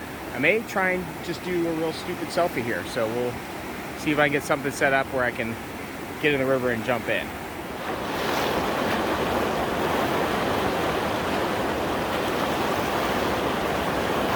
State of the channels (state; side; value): identical; both; correlation 1.00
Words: I may try and just do a real stupid selfie here. So we'll see if I can get something set up where I can get in the river and jump in.